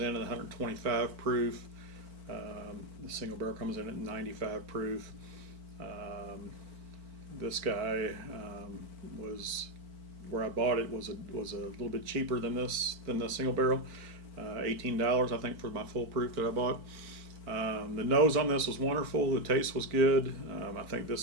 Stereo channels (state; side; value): late; left; 4.5 ms